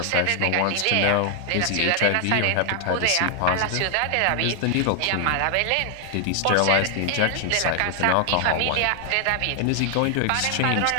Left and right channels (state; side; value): different; both; correlation 0.00